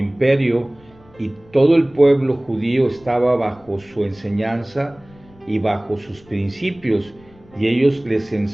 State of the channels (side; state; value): left; noise; rumble, 27 dB below the sound